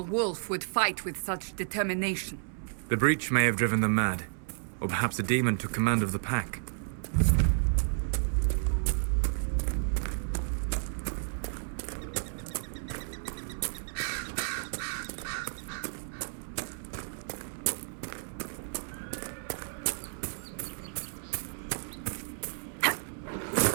wolf would fight with such determination. The breach may have driven them mad. Or perhaps a demon took command of the pack.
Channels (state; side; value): silent; left; 57 dB below the other